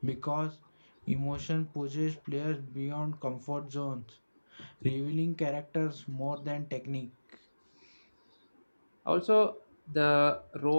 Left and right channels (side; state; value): both; inverted; correlation -1.00